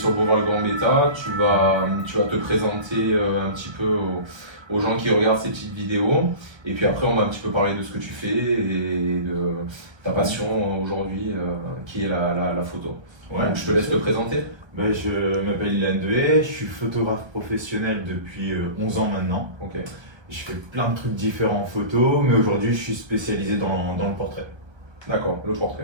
le boulevard Le Grand Bêta. Tu vas te présenter un petit peu aux gens qui regardent ces petites vidéos. Et puis après, on va un petit peu parler de ce que tu fais et de ta passion aujourd'hui qui est la photo. Ouais, Donc je te laisse te présenter. Je m'appelle Ilan Dehé, je suis photographe professionnel depuis 11 ans maintenant. Ok, Je fais plein de trucs différents en photo, mais aujourd'hui je suis spécialisé dans le portrait. d'accord, le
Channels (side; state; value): left; late; 1.3 ms